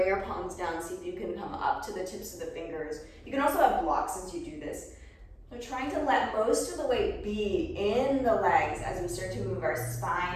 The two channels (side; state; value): both; identical; correlation 1.00